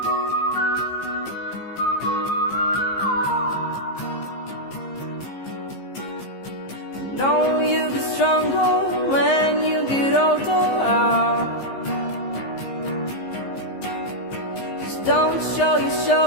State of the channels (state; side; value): late; right; 15 ms